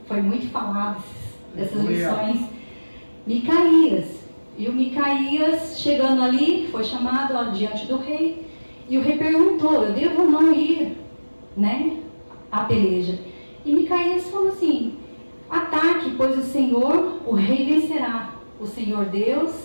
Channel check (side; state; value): both; inverted; correlation -1.00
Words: Foi muito falado dessas lições. Micaías. E o Micaías, chegando ali, foi chamado diante do rei. E o rei perguntou: eu devo ou não ir, né, à peleja? E Micaías falou assim: ataque, pois o Senhor, o rei vencerá. O Senhor Deus